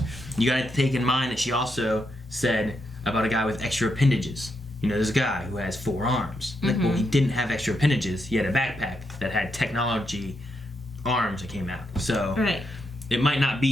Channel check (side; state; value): both; normal; correlation 0.81